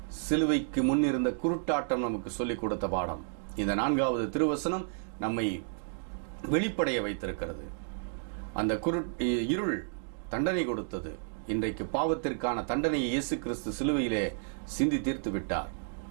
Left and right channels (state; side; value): silent; left; digital silence